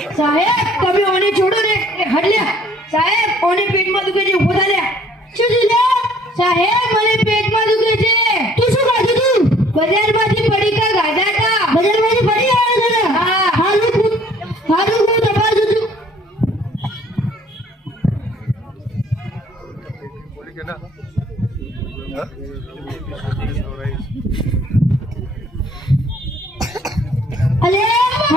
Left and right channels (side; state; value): both; normal; correlation 0.58